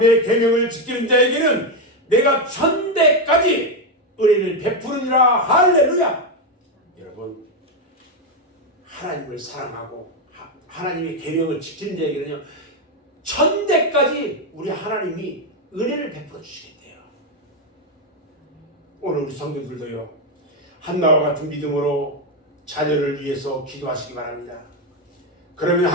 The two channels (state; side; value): normal; both; correlation 0.07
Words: 계명을 지키는 자에게는 내가 천대까지 은혜를 베푸느니라. 할렐루야. 여러분 하나님을 사랑하고 하나님의 계명을 지키는 자에게는요 천대까지 우리 하나님이 은혜를 베풀어 주시겠대요. 오늘 우리 성도들도요 한나와 같은 믿음으로 자녀를 위해서 기도하시기 바랍니다. 그러면